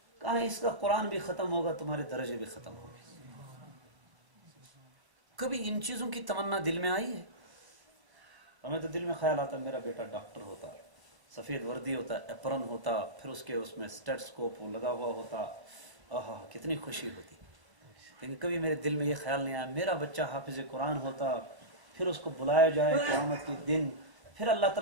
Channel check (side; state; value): left; late; 1.0 ms